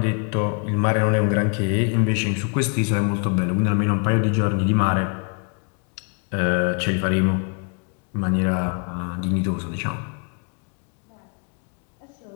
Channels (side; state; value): right; quieter; 38.3 dB